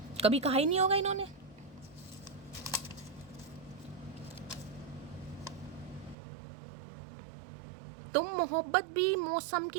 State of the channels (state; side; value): drops out; left; at 6.2 s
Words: कभी कहा ही नहीं होगा इन्होंने। तुम मोहब्बत भी मौसम